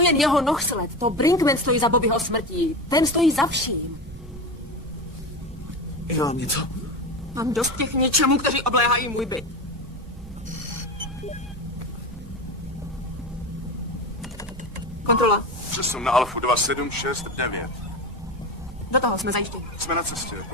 jeho nohsled. To Brinkman stojí za Bobbyho smrtí. Ten stojí za vším. Já mám něco. Mám dost těch něčemů, kteří obléhají můj byt. Kontrola. Přesun na Alfu 2769. Do toho jsme zajištěni. Jsme na cestě,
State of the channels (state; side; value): noise; right; rumble, 15 dB below the sound